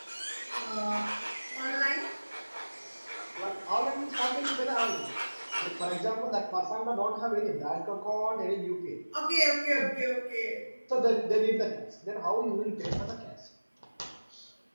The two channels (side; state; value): both; inverted; correlation -1.00